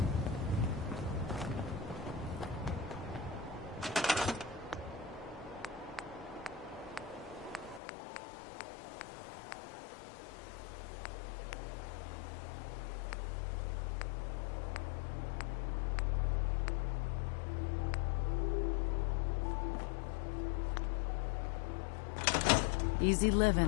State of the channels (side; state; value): right; drops out; at 7.8 s